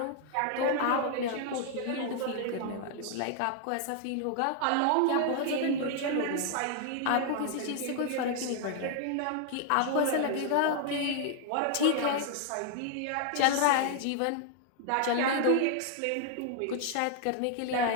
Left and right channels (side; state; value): both; different; correlation 0.00